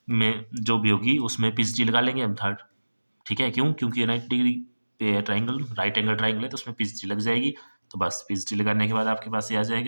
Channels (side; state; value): both; inverted; correlation -1.00